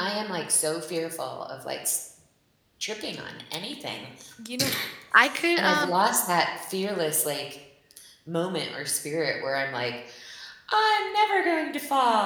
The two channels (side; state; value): both; identical; correlation 1.00